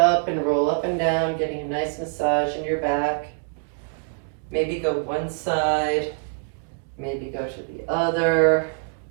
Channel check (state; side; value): silent; left; 56 dB below the other